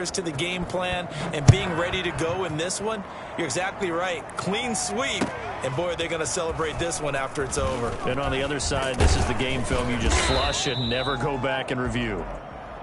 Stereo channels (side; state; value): both; identical; correlation 1.00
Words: to the game plan, and being ready to go in this one? You're exactly right. Clean sweep. And, boy, are they going to celebrate this one after it's over. And on the other side, this is the game film you just flush and never go back and review.